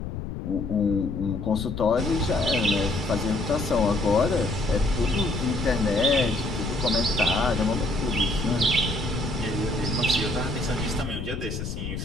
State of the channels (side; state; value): left; noise; rumble, 6 dB below the sound